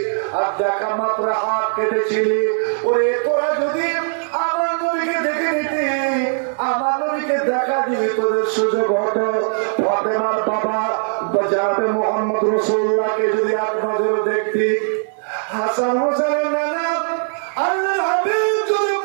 আর দেখা মাত্র হাত কেটেছিলি। ওরে তোরা যদি আমার নবীকে দেখে নিতি, আমার নবীকে দেখা দিবি, তোদের সুযোগ হতো। ফাতেমার বাবা জানাবে মোহাম্মদ রাসূলুল্লাহকে যদি এক নজরে দেখতি, হাসান হোসেনের নানা আল্লাহর হাবিব যদি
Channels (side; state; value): left; silent; 66 dB below the other